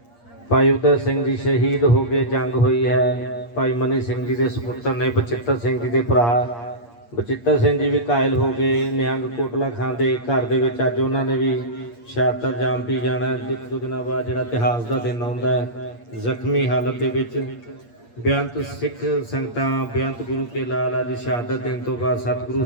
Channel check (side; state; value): right; late; 8.5 ms